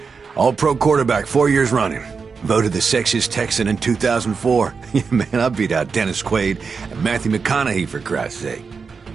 All-pro quarterback 4 years running. Voted the sexiest Texan in 2004. Yeah, man, I beat out Dennis Quaid and Matthew McConaughey, for Christ's sake.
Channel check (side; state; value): left; quieter; 5.3 dB